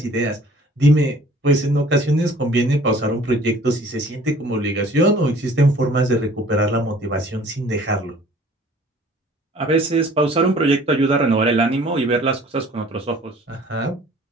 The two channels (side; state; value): both; normal; correlation 0.52